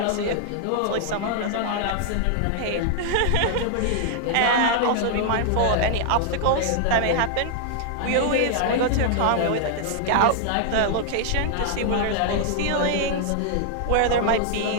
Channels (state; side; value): different; both; correlation -0.01